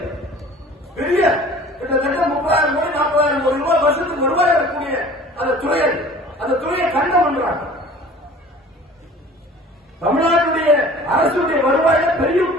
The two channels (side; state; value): both; normal; correlation 0.46